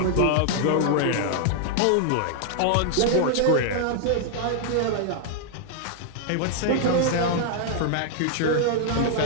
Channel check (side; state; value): both; different; correlation 0.00